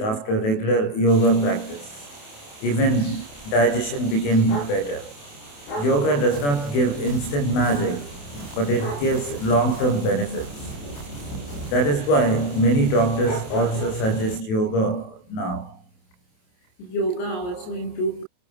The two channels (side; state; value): right; late; 28 ms